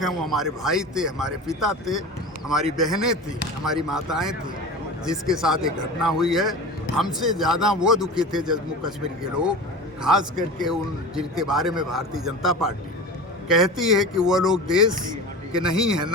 हैं। वो हमारे भाई थे, हमारे पिता थे, हमारी बहनें थी, हमारी माताएं थी, जिसके साथ एक घटना हुई है। हमसे ज़्यादा वो दुखी थे जम्मू कश्मीर के लोग, खास करके उन जिनके बारे में भारतीय जनता पार्टी कहती है कि वो लोग देश के नहीं हैं,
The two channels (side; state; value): both; normal; correlation 0.32